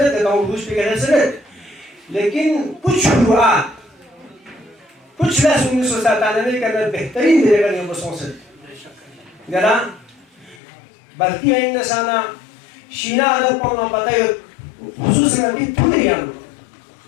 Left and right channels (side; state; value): right; drops out; at 10.6 s